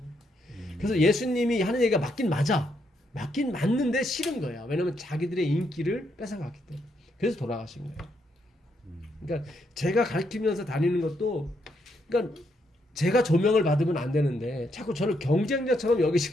그래서 예수님이 하는 얘기가 맞긴 맞아. 맞긴 맞는데 싫은 거야. 왜냐면 자기들의 인기를 뺏어갔기 때문에. 그래서 돌아가신 거예요. 그러니까 제가 가르치면서 다니는 것도 그러니까 제가 조명을 받으면 안 되는데 자꾸 저를 경쟁자처럼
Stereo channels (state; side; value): normal; both; correlation 0.77